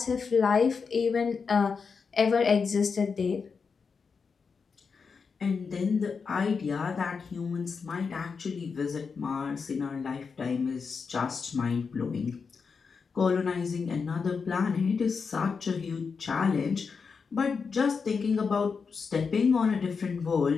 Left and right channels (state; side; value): quieter; right; 5.4 dB